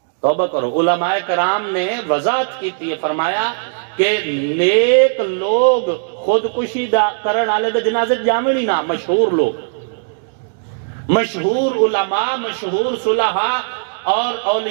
توبہ کرو. علماء کرام نے وضاحت کی تھی، فرمایا کہ نیک لوگ خود کشی کرن والے دے جنازے جاویں نہیں نا. مشہور لوگ، مشہور علماء، مشہور صلحاء اور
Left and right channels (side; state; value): left; silent; digital silence